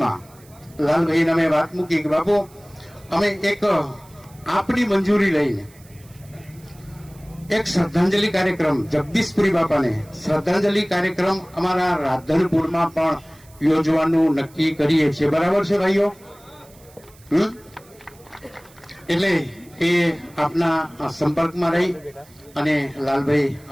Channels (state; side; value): noise; right; hiss, 27 dB below the sound